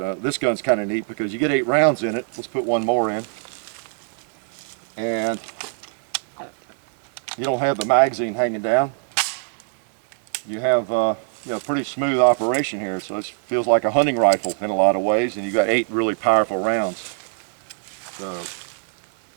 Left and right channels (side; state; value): left; silent; 61 dB below the other